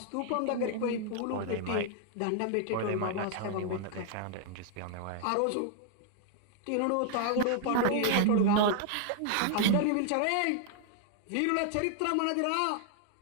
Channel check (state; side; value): different; both; correlation 0.00